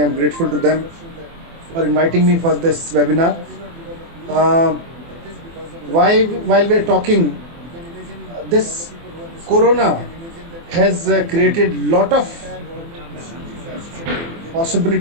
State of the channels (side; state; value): left; late; 24 ms